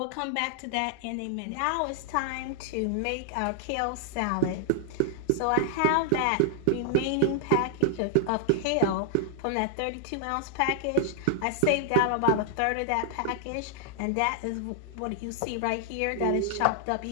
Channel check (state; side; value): different; both; correlation 0.00